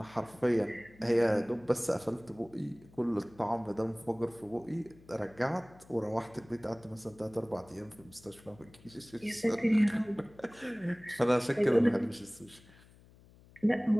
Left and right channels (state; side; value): noise; left; hum, 25 dB below the sound